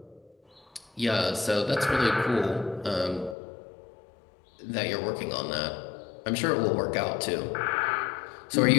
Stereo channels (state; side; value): drops out; right; at 3.4 s